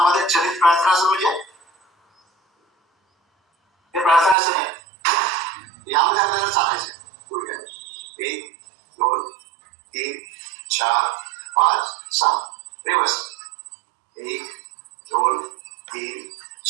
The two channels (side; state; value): left; drops out; at 4.4 s